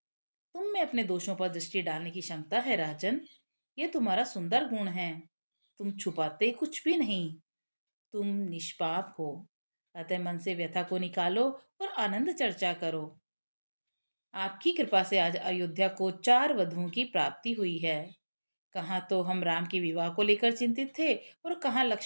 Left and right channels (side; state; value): both; inverted; correlation -1.00